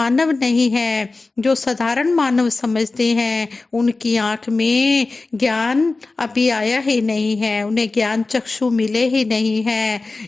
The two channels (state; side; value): quieter; right; 3.6 dB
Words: नहीं है। जो साधारण मानव समझते हैं उनकी आंख में ज्ञान अभी आया ही नहीं है, उन्हें ज्ञान चक्षु मिले ही नहीं है।